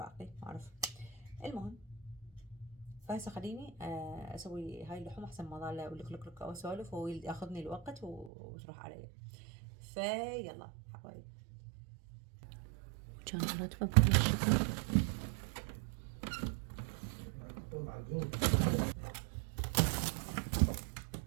ما اعرف. المهم، فهسه خليني اسوي هاي اللحوم احسن ما ظل لك لك واسولف وياخذني الوقت وتروح علي. فيلا حبايبي، كان راتبه بهالشكل.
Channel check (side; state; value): left; drops out; at 8.3 s